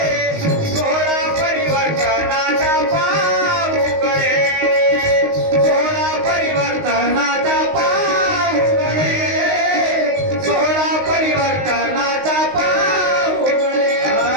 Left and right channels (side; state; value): left; late; 19 ms